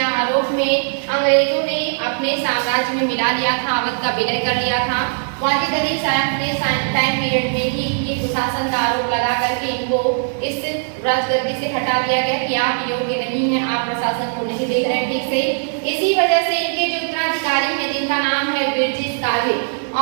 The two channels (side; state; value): left; silent; digital silence